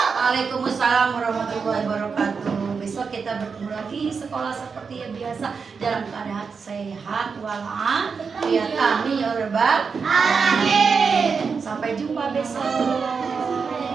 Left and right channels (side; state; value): left; quieter; 5.5 dB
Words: Waalaikumsalam warahmatullahi wabarakatuh. Besok kita bertemu lagi sekolah seperti yang biasa dalam keadaan sehat walafiat. Amin ya Rabbal alamin. Sampai jumpa besok.